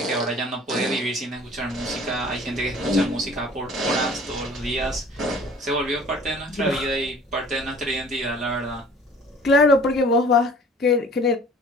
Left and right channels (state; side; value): normal; both; correlation 0.48